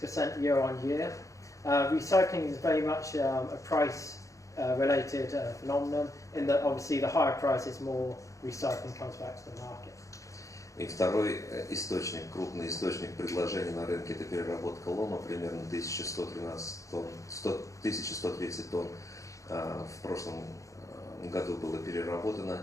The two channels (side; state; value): right; late; 0.15 ms